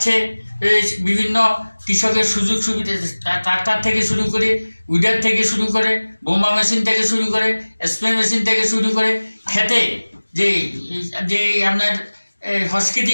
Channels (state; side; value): inverted; both; correlation -1.00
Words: বিভিন্ন কৃষকের সুযোগ সুবিধা ট্রাক্টর থেকে শুরু করে উইডার থেকে শুরু করে বোমা মেশিন থেকে শুরু করে স্প্রে মেশিন থেকে শুরু করে খেতে যে যে আপনার